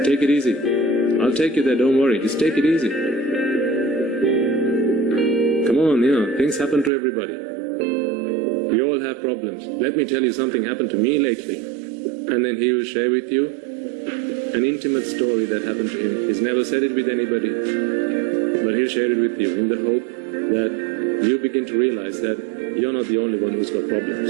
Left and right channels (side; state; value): left; drops out; at 6.9 s